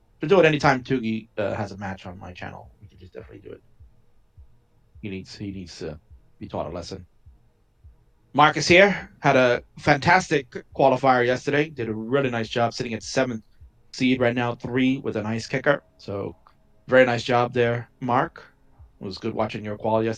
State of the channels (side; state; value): both; identical; correlation 1.00